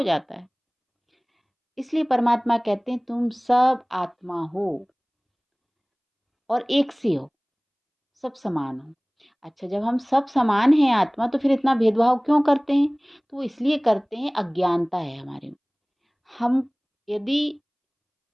जाता है। इसलिए परमात्मा कहते हैं तुम सब आत्मा हो और एक से हो, सब समान हो। अच्छा, जब हम सब समान हैं आत्मा, तो फिर इतना भेदभाव क्यों करते हैं? तो वो इसलिए करते हैं, अज्ञानता है हमारे में। हम यदि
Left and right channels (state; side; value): identical; both; correlation 1.00